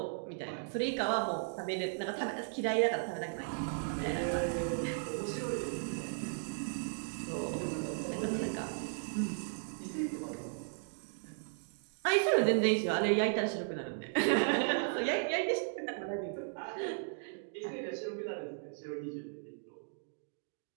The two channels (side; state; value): left; silent; digital silence